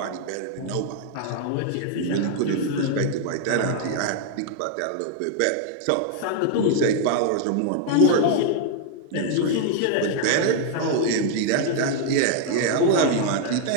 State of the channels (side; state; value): both; different; correlation 0.00